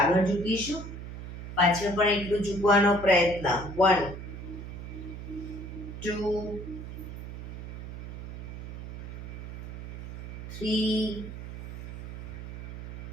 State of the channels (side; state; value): right; noise; hum, 9 dB below the sound